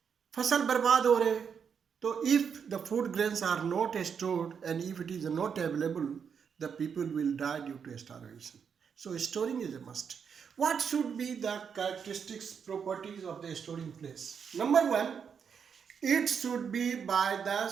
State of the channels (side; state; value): left; quieter; 6.9 dB